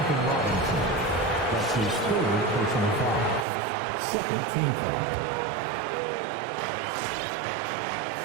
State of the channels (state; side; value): drops out; left; at 3.5 s